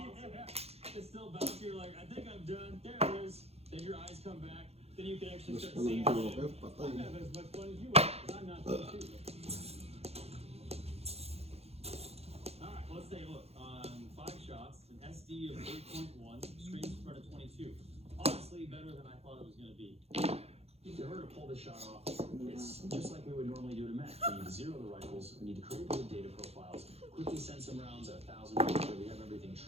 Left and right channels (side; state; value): left; late; 0.30 ms